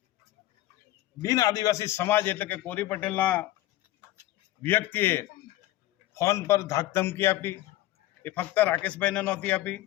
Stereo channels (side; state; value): right; quieter; 15.7 dB